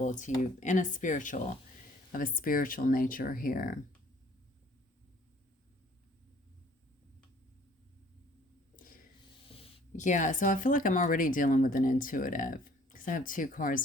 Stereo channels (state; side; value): normal; both; correlation 0.56